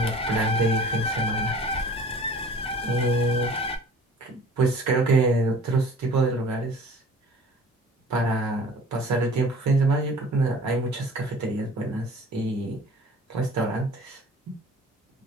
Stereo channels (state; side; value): normal; both; correlation 0.46